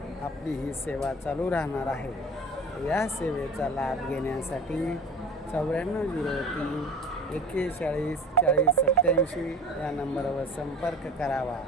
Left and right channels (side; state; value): both; normal; correlation 0.39